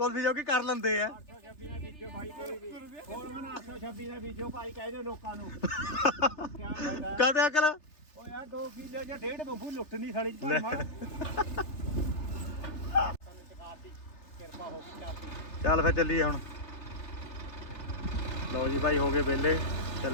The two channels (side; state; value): right; late; 3.3 ms